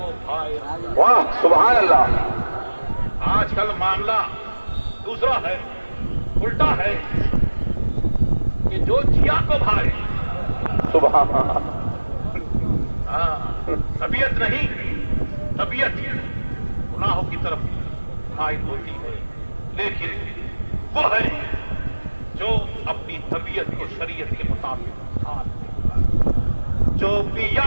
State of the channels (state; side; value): inverted; both; correlation -1.00